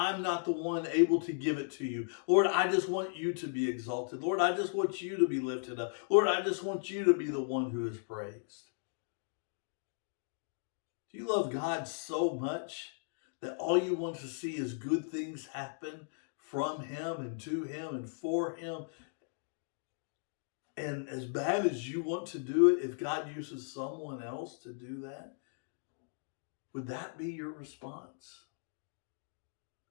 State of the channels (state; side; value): silent; right; digital silence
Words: not the one able to give it to you, Lord, I just want you to be exalted. Lord, I just want you to be lifted up. Lord, I just want you to be the one who is praised." Do you love God so much that all you want to see is good things happen from him and to him and for him? And as bad as you want to do it, if God uses someone else to do that, would that be your response?